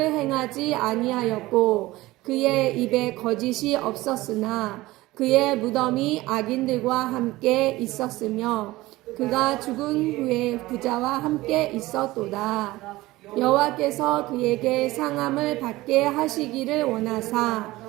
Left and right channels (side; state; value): left; quieter; 18.7 dB